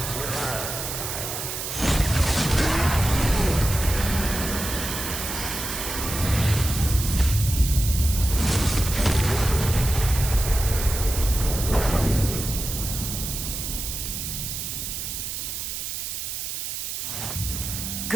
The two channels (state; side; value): noise; right; hiss, 5 dB below the sound